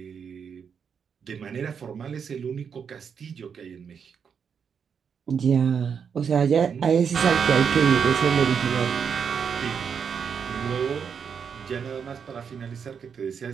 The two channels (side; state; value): left; quieter; 6.8 dB